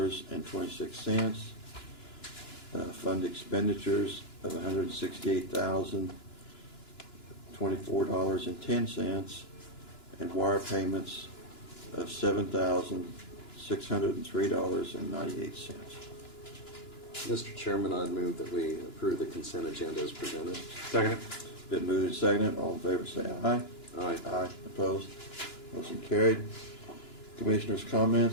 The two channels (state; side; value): late; right; 2.9 ms